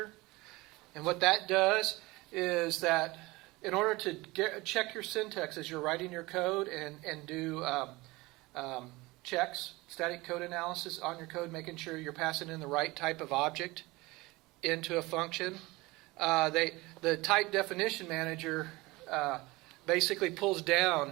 And what that does is that in order to check your syntax as you're writing your code and do checks, static code analysis on your code, making sure you're passing in the right type of object into a function, the type definition manager basically pulls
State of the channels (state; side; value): quieter; left; 21.9 dB